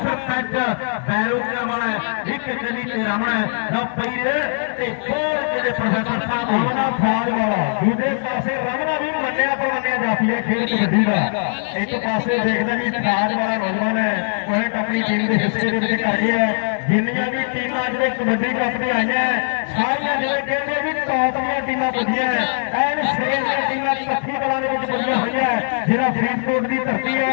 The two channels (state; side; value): silent; right; 65 dB below the other